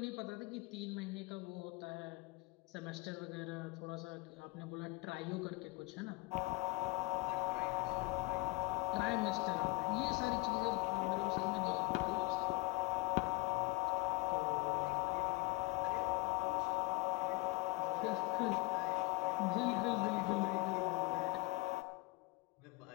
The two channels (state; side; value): quieter; right; 20.9 dB